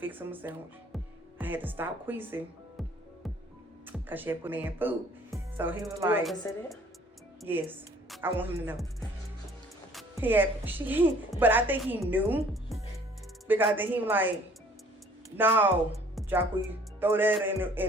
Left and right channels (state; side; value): normal; both; correlation 0.55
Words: him a sandwich. I had to stop queasing because she had put me in food. So he was like, you say that? Yes, I want him to know. But I think he knew because then he was like, no, Jacque, throw that